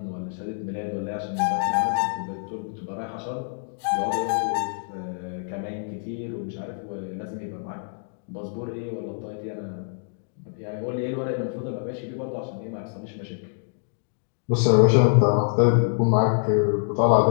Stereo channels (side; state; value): right; silent; digital silence